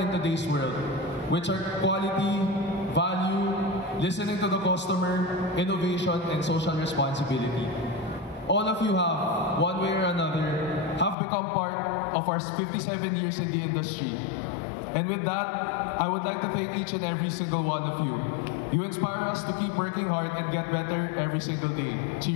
today's world, which are quality, value, listening to the customer, innovation, and social responsibility. All of you have, one way or another, have become part of our 57 years in the industry. And with that, I would like to thank each and every single one of you. You inspire us to keep working hard and get better every single day.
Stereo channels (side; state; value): right; drops out; at 11.2 s